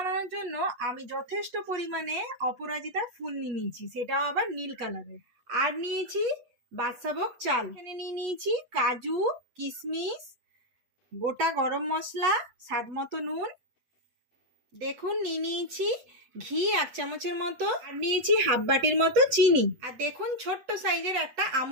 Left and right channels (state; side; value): late; left; 8.2 ms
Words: জন্য আমি যথেষ্ট পরিমাণে অপরাজিতা ফুল নিয়ে নিয়েছি, সেটাও আবার নীল কালারের। আর নিয়েছি বাদশাভোগ চাল। এখানে নিয়ে নিয়েছি কাজু, কিশমিশ, গোটা গরম মশলা, স্বাদ মতো নুন। দেখুন নিয়ে নিয়েছি ঘি 1 চামচের মতো, আর নিয়েছি হাফ বাটির মতো চিনি। আর দেখুন ছোট্ট সাইজের একটা